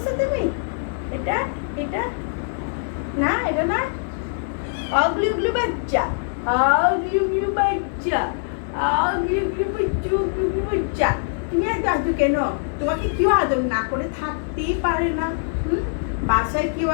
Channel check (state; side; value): silent; right; digital silence